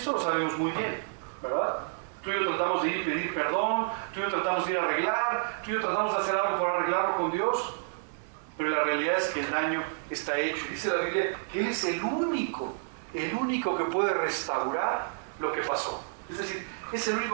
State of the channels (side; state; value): left; silent; 57 dB below the other